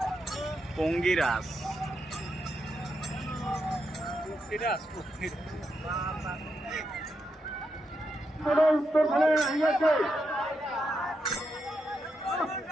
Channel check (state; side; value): normal; both; correlation 0.83